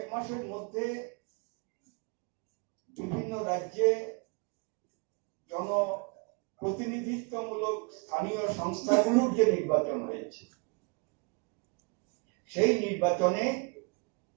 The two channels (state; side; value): quieter; left; 31.3 dB